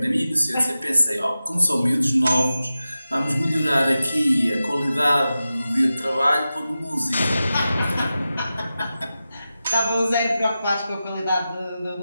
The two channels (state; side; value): inverted; both; correlation -0.93